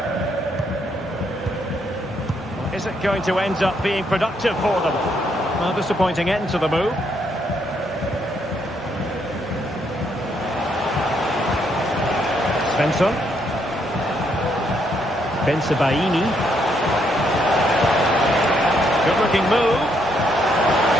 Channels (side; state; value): both; normal; correlation 0.74